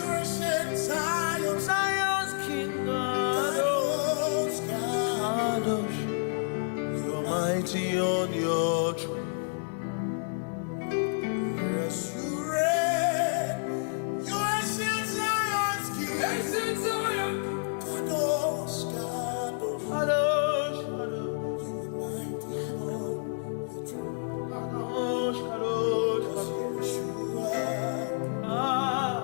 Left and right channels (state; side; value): silent; right; digital silence